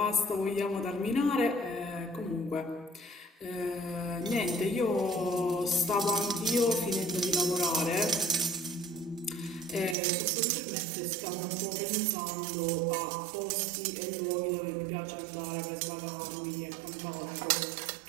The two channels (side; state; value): left; drops out; at 10.0 s